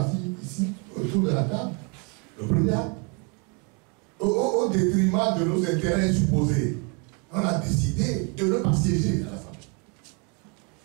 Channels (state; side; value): quieter; left; 33.9 dB